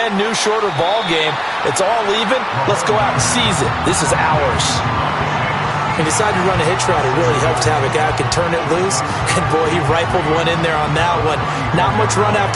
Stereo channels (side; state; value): both; identical; correlation 1.00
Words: new, shorter ball game. It's all even. Let's go out and seize it. This is ours. He decided to run a hitch route. It really helped to have a guy who can turn it loose. And, boy, he rifled one in there on that one. Not much run